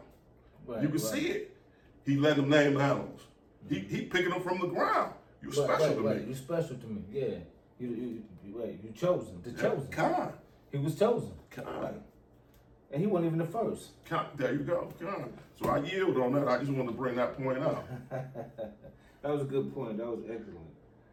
Right, You can see it. He let him name the animals. He picking them from the ground. You special to me. You special to me. Yeah. You chosen. The chosen. Kind. He was chosen. Kind. And he wasn't even the first. There you go. Kind. So I yield on that. I just wanted to bring that point out. That was a good point. That was excellent.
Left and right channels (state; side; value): identical; both; correlation 1.00